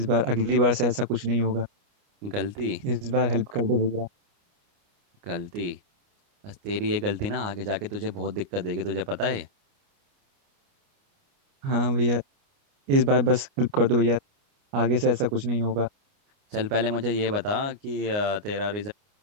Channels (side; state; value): left; late; 29 ms